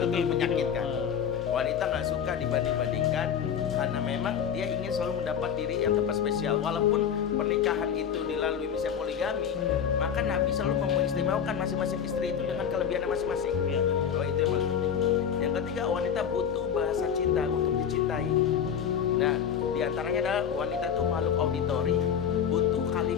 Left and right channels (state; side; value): quieter; right; 8.0 dB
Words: menyakitkan. Wanita nggak suka dibanding-bandingkan karena memang dia ingin selalu mendapat diri yang tepat spesial. Walaupun pernikahan itu dilalui misalnya poligami, maka Nabi selalu mengistimewakan masing-masing istri itu dengan kelebihannya masing-masing. Oh, itu yang paling penting. Yang ketiga, wanita butuh bahasa cinta untuk dicintai. Nah, diantaranya adalah wanita itu makhluk auditori, butuh